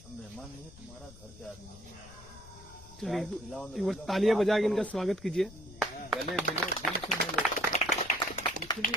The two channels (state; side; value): noise; left; rumble, 19 dB below the sound